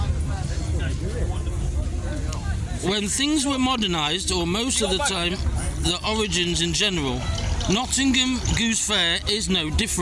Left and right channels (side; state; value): both; identical; correlation 1.00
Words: When things were modernised, or most of the time, the origins in general, Nottingham Goose Fair is no